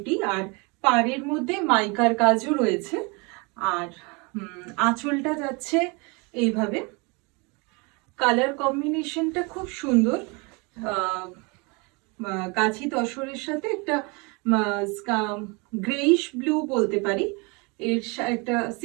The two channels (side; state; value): left; quieter; 29.6 dB